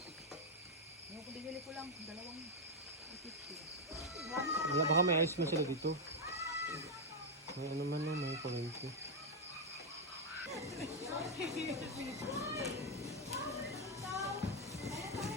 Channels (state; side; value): normal; both; correlation 0.01